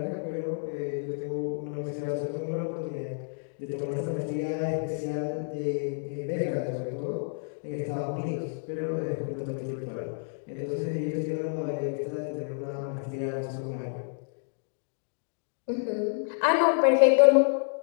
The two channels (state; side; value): silent; right; digital silence